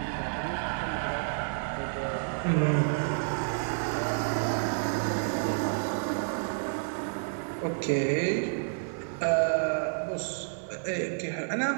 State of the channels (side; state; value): left; silent; digital silence